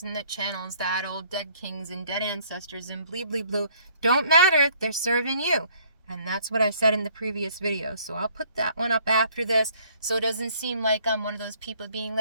that channels that, old dead kings and dead ancestors and bleebly blue, don't matter, they're serving you. And that's what I said in the previous video. So I'll put that one up after this, so it doesn't seem like I'm one of those people being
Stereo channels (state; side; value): inverted; both; correlation -0.61